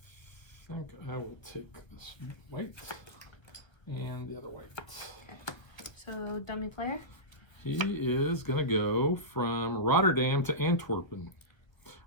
I think I will take this white and the other white. Okay. So dummy player. He is gonna go from Rotterdam to Antwerpen,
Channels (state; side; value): late; right; 1.5 ms